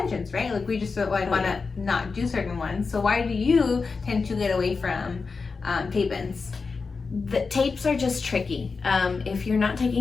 right? We just want to not do certain ones. So why do you tend to get away from tape-ins? The tapes are just tricky. If you're not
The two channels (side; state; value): right; quieter; 4.6 dB